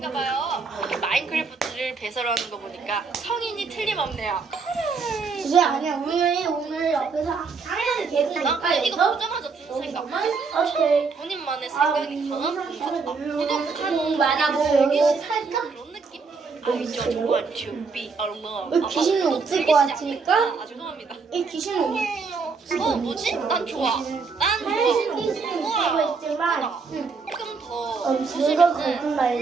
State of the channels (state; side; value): quieter; left; 4.8 dB